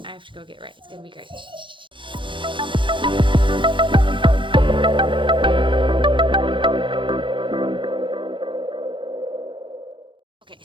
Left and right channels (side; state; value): left; late; 0.24 ms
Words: I have to go get ready. It's gonna be great. Okay,